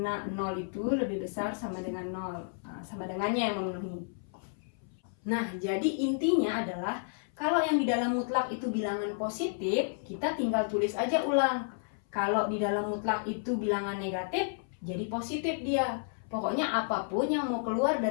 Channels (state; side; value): silent; right; 57 dB below the other